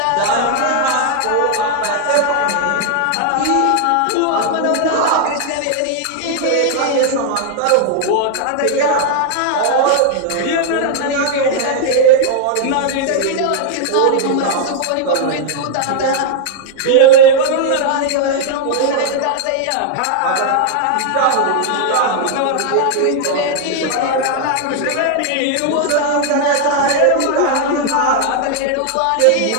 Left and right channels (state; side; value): different; both; correlation 0.00